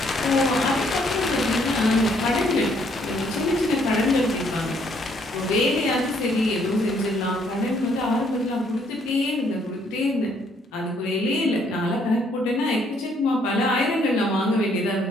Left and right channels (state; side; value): normal; both; correlation 0.68